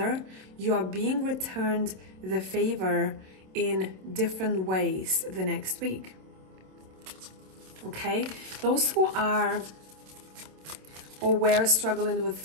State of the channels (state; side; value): late; left; 27 ms